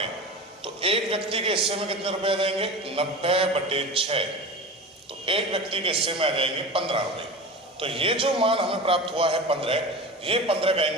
तो एक व्यक्ति के हिस्से में कितने रुपए आ जाएंगे? 90/6। तो एक व्यक्ति के हिस्से में आ जाएंगे 15 रुपए। तो ये जो मान हमें प्राप्त हुआ है 15, ये 15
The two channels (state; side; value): normal; both; correlation 0.30